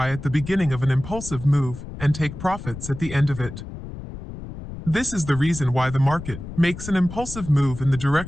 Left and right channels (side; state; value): left; noise; rumble, 11 dB below the sound